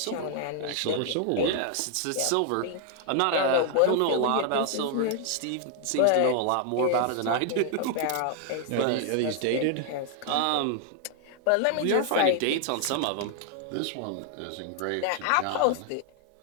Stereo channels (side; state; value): both; different; correlation 0.00